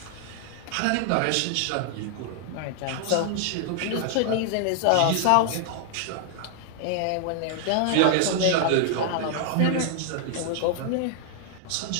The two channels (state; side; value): different; both; correlation 0.00